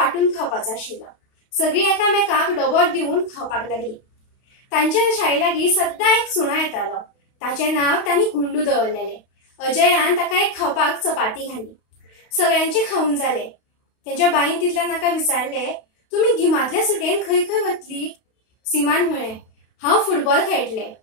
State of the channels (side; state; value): right; late; 32 ms